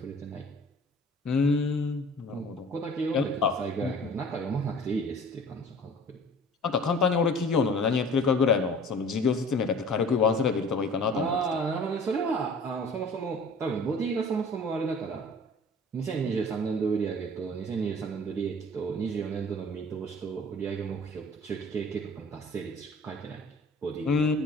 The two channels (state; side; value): normal; both; correlation 0.46